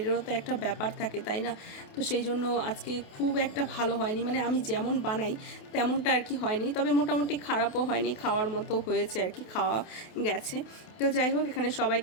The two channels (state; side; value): late; right; 28 ms